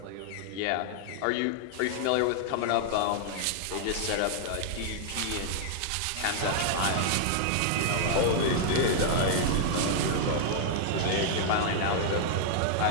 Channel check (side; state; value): both; different; correlation -0.01